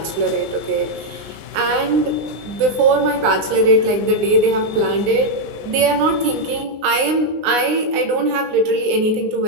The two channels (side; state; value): left; late; 19 ms